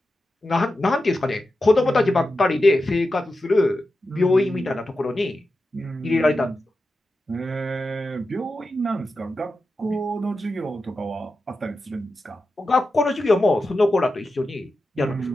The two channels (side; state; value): both; normal; correlation 0.91